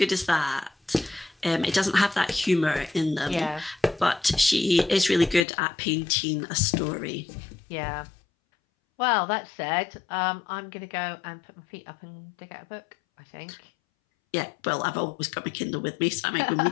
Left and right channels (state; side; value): drops out; right; at 5.5 s